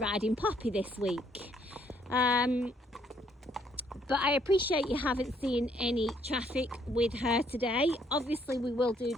Poppy this week. But I appreciate you haven't seen any traffic with her today. Obviously we will do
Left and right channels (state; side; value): normal; both; correlation 0.68